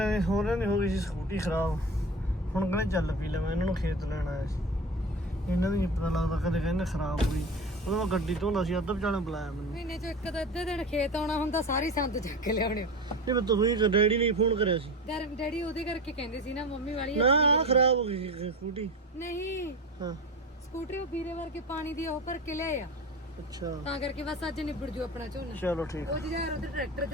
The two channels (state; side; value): normal; both; correlation 0.30